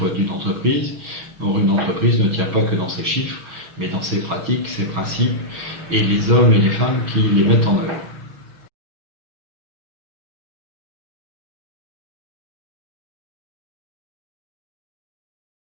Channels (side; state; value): left; late; 6.3 ms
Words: d'une entreprise. Or, une entreprise ne tient pas que dans ses chiffres, mais dans ses pratiques, ses principes, et les hommes et les femmes qui les mettent en œuvre.